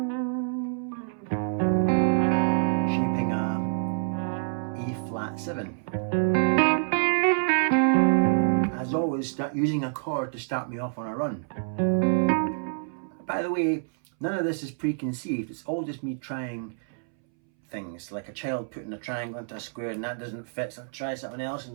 shaping a A flat 7. As always, start using a chord to start me off on a run. By the way, none of this is preconceived, it's all just me trying things, like a child putting a triangle into a square and that doesn't fit, so I try something else and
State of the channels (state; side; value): silent; left; 60 dB below the other